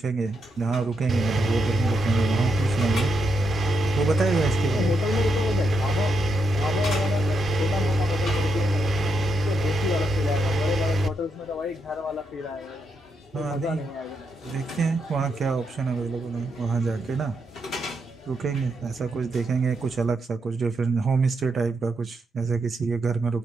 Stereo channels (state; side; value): normal; both; correlation 0.81